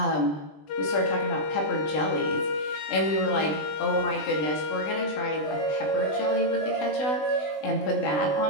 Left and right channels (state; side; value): late; right; 20 ms